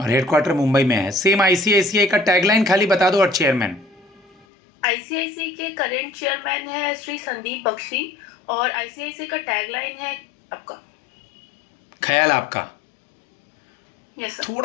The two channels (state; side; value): drops out; right; at 4.5 s